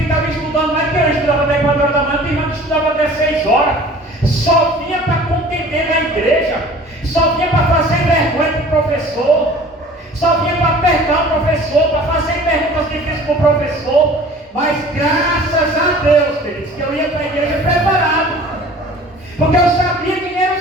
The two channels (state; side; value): normal; both; correlation 0.46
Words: estudando mais que eu estudava até 4 horas da manhã, tem irmãos que estudavam até 6 horas, só vinha para contender na igreja, só vinha para fazer vergonha para o professor, só vinha para apertar o professor, para fazer perguntas difíceis para o professor. Mas graças a Deus, queridos, que eu ia para a igreja preparado, porque eu sabia quem eram